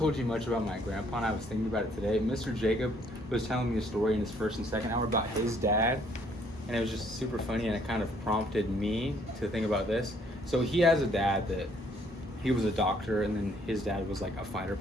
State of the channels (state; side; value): normal; both; correlation 0.65